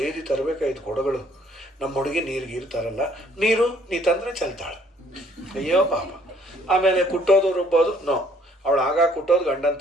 ತರಬೇಕಾಯ್ತು ಕೊಡಗಳು. ನಮ್ಮ ಹುಡುಗಿ ನೀರು ಗೀರು ತರಲ್ಲ, ನೀರು ನೀ ತಂದರೆ ಚೆಲ್ತಾಳೆ. ಅಯ್ಯೋ ಪಾಪ. ಆಮೇಲೆ ಕುಟ್ಟೋದು ರುಬ್ಬೋದು ನೋ, ಅವಳು ಆಗ ಕುಟ್ಟೋದು ಗಂಡನ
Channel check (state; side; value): normal; both; correlation 0.62